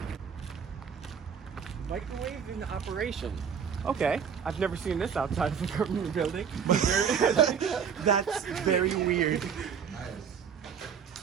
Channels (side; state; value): left; quieter; 7.2 dB